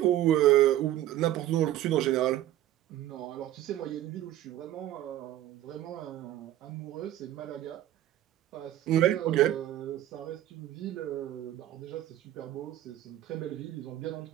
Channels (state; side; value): quieter; left; 13.3 dB